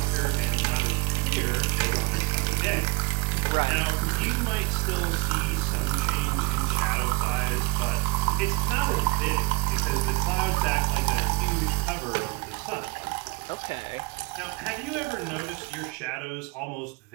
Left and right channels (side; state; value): left; quieter; 28.7 dB